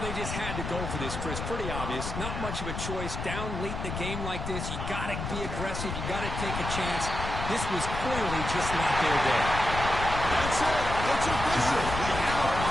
just had to go for this, Chris. Pretty obvious. Not much of a choice. Down late in the game like this, you got to be aggressive. You got to take a chance. This was clearly just not their day. That's it. It's official. We have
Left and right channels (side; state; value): left; noise; rumble, 5 dB below the sound